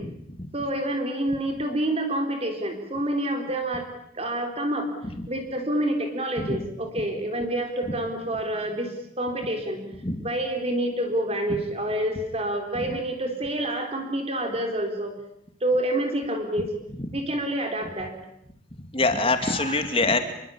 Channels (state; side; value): normal; both; correlation 0.34